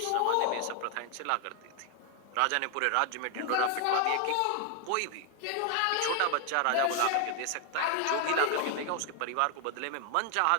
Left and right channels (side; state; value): both; different; correlation 0.00